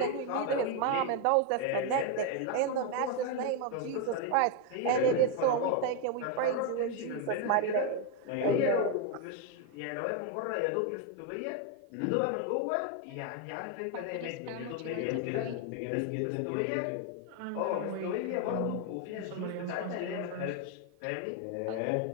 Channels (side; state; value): both; different; correlation 0.01